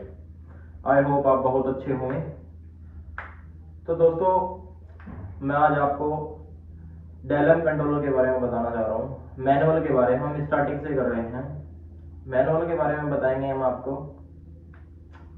आई होप आप बहुत अच्छे होंगे। तो दोस्तों, मैं आज आपको डेलम कंट्रोलर के बारे में बताना चाह रहा हूँ। मैनुअल के बारे में हम स्टार्टिंग से कर रहे हैं। मैनुअल के बारे में बताएंगे हम आपको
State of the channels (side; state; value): both; identical; correlation 1.00